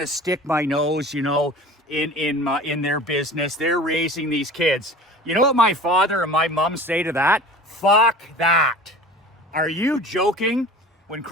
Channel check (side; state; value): both; normal; correlation 0.40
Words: to stick my nose, you know, in their business. They're raising these kids. You know what my father and my mom say to that? Fuck that. Are you joking? When